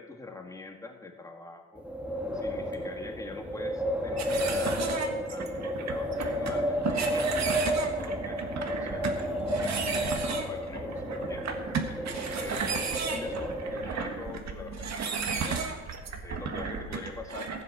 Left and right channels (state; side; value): normal; both; correlation 0.46